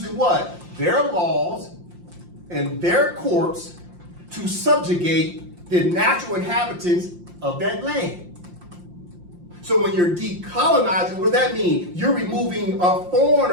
what? Their laws and their courts to subjugate the natural inhabitants of that land. So when you're decolonizing, what does that mean? You're removing a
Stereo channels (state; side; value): late; left; 5.7 ms